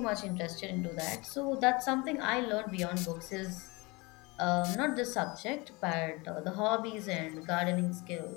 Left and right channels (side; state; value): right; quieter; 25.8 dB